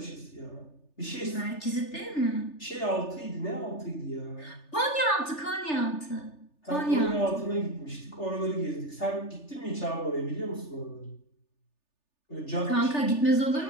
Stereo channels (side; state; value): right; late; 3.4 ms